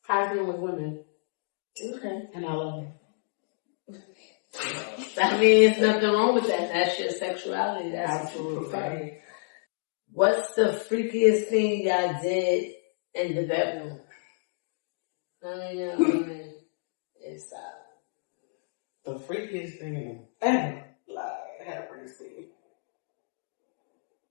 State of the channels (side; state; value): right; silent; digital silence